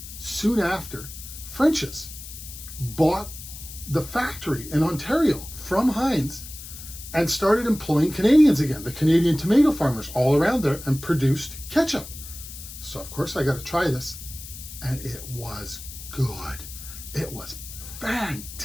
soon after, French's bought the factory in Ontario from Heinz and started employing Canadians again, the Canadian tomato farmers all around there, and produced ketchup. So of course I got to try this, and it was good. It was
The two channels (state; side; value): noise; left; hiss, 13 dB below the sound